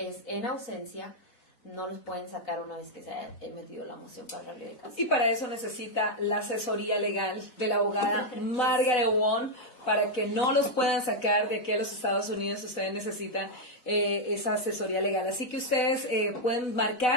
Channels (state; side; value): late; right; 4.0 ms